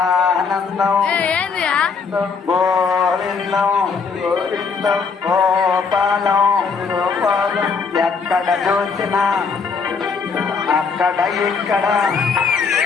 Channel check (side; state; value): right; quieter; 5.3 dB